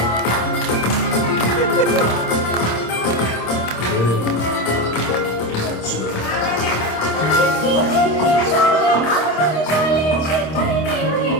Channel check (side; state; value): right; late; 26 ms